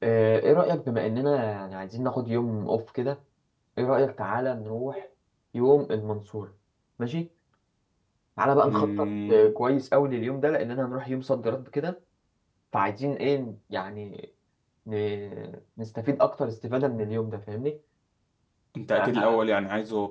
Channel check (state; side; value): identical; both; correlation 1.00